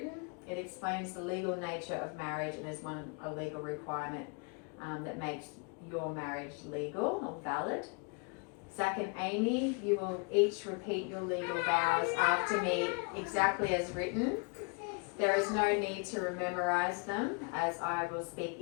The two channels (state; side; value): quieter; right; 32.8 dB